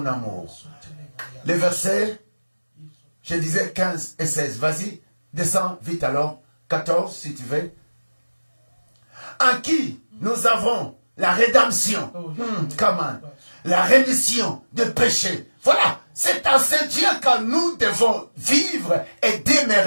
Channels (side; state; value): both; inverted; correlation -1.00